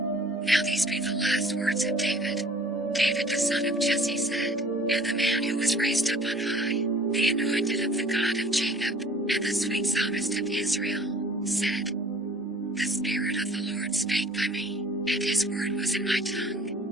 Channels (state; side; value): normal; both; correlation 0.51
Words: Now these be the last words of David. David the son of Jesse said, and the man who was raised up on high, the anointed of the God of Jacob, and the sweet psalmist of Israel, said, The Spirit of the Lord spake by me, and his word was in my